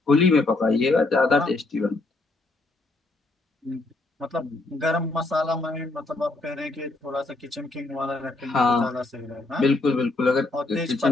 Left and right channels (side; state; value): right; quieter; 3.1 dB